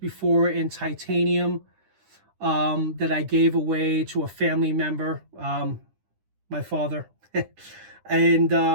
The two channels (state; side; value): late; left; 9.9 ms